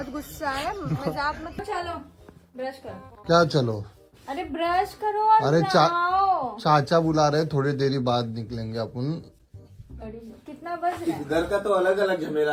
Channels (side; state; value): both; identical; correlation 1.00